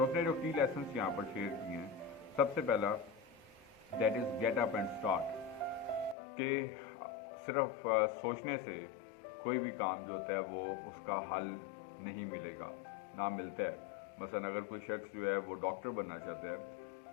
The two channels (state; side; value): drops out; right; at 6.2 s